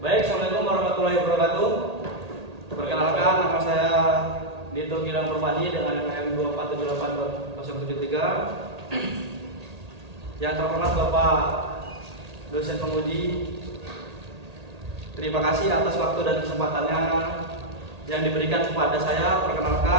Baik, Assalamualaikum warahmatullahi wabarakatuh. Perkenalkan, nama saya Dito Gilang Permadi dengan NPM 2478073. Yang terhormat Bapak dosen penguji, terima kasih atas waktu dan kesempatannya yang diberikan kepada saya.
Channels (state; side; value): late; left; 1.8 ms